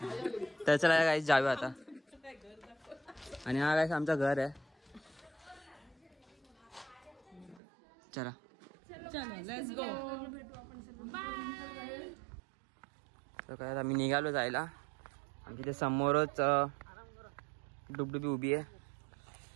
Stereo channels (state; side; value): drops out; left; at 7.6 s